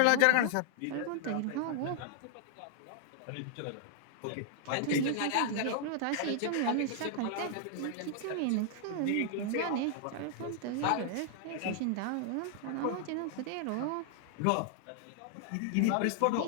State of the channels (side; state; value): both; different; correlation -0.01